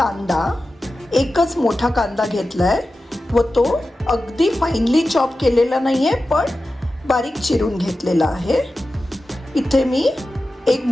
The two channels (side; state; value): both; normal; correlation 0.93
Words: एकच मोठा कांदा घेतला आहे व तो अगदी फाईनली चॉप केलेला नाही आहे, पण बारीक चिरून घेतलेला आहे. इथे मी एक